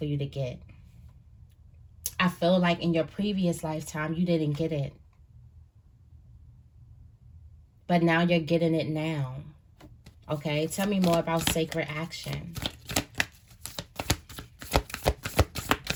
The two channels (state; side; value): identical; both; correlation 1.00